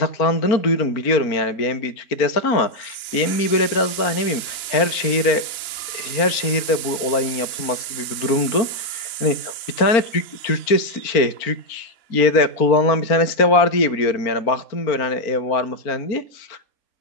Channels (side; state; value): right; late; 4.4 ms